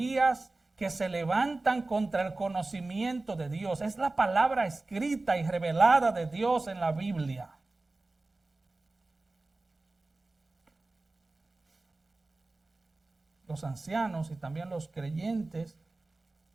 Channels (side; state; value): left; quieter; 3.1 dB